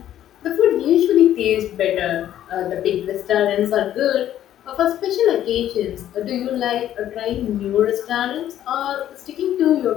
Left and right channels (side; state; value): right; quieter; 11.7 dB